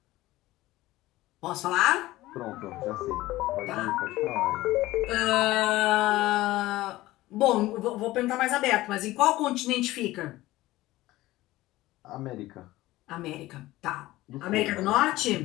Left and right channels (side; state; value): right; quieter; 17.4 dB